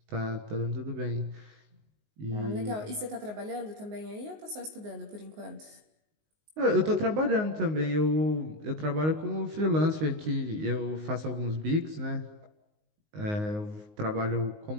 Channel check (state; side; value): late; left; 19 ms